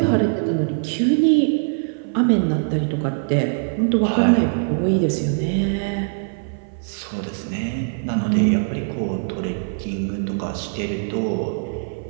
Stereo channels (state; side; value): silent; left; 56 dB below the other